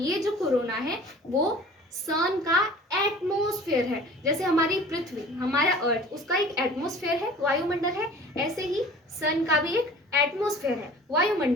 जो कोरोना है वो सन का एटमॉस्फेयर है। जैसे हमारी पृथ्वी, हमारा अर्थ, उसका एक एटमॉस्फेयर है, वायुमंडल है, ऐसे ही सन का भी एक एटमॉस्फेयर है,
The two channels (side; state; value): both; normal; correlation 0.45